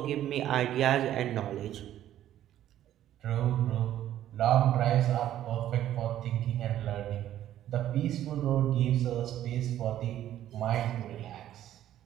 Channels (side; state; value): left; quieter; 12.1 dB